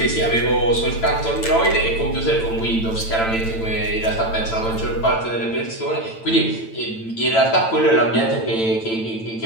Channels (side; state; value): right; late; 9.0 ms